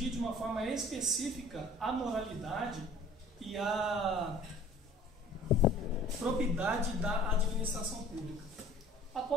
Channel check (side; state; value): both; normal; correlation 0.49